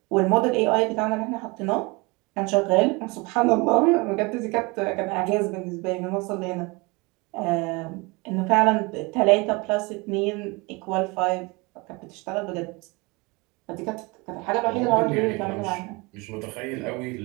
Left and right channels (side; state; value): left; quieter; 25.9 dB